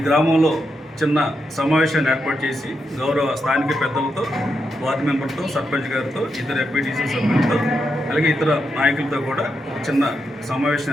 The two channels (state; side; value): normal; both; correlation 0.84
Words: గ్రామంలో చిన్న సమావేశాన్ని ఏర్పాటు చేసి గౌరవ స్థానిక పెద్దలతో, వార్డు మెంబర్తో, సర్పంచ్ గారితో, ఇతర ఎంపీటీసీ సభ్యులతో, అలాగే ఇతర నాయకులతో కూడా చిన్న సమావేశం